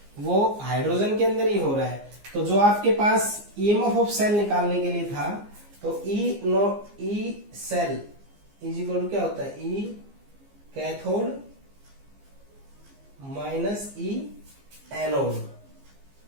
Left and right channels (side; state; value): left; late; 15 ms